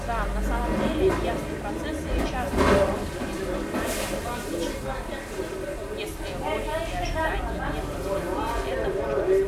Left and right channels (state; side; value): identical; both; correlation 1.00